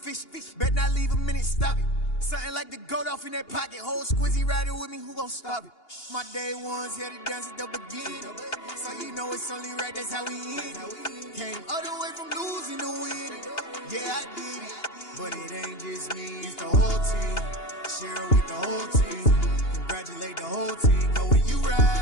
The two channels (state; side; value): late; right; 2.8 ms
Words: Bet not leave a minute, stop it. Something like the goat off in that pocket. Whole squizzy riding with me, who gon' stop it? My day ones here to dance at the beginning. So you know it's only right, that's how we end. Came all the way from losing to winning. Yeah, I did it, but it ain't just me, it's the whole team. Share it with the whole team. Congratulate the whole team. Cause when you